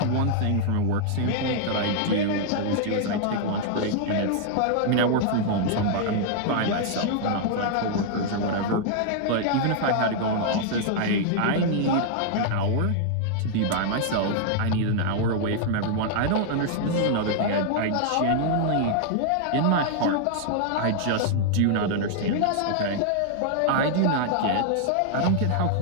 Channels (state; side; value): different; both; correlation -0.01